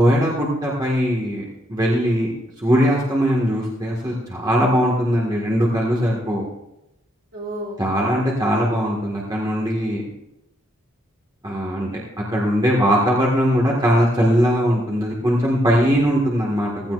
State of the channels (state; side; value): normal; both; correlation 0.76